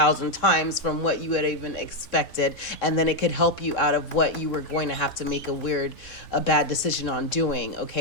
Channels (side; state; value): right; late; 3.7 ms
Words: times from what you had even expected, and then it could help you out of what you were going to have to make a bad decision on doing.